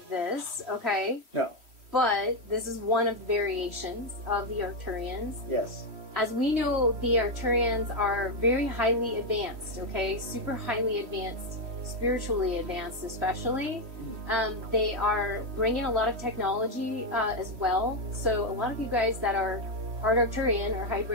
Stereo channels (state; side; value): late; left; 3.1 ms